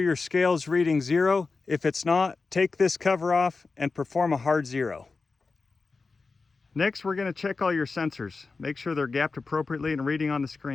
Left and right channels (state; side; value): quieter; right; 4.2 dB